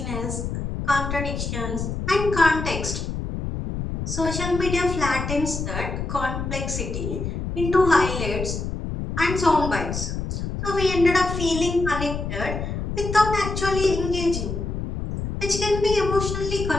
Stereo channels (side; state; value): left; noise; rumble, 4 dB below the sound